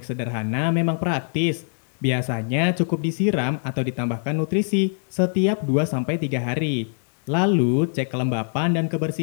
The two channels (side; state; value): right; silent; 62 dB below the other